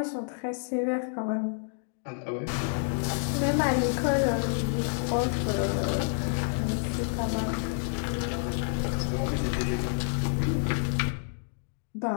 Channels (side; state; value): right; silent; digital silence